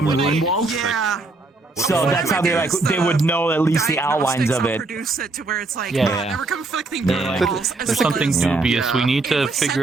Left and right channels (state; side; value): quieter; left; 3.3 dB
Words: Runewald. So that's how they would know at least the outlines of it. Yeah. There's something dubious. We need to